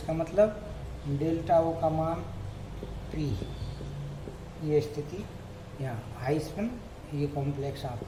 मतलब डेल्टा ओ का मान 3। ये स्थिति यहाँ हाई स्पिन, ये कॉम्प्लेक्स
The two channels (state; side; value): identical; both; correlation 1.00